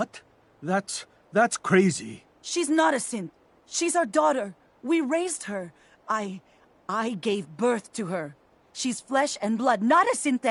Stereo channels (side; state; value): both; identical; correlation 1.00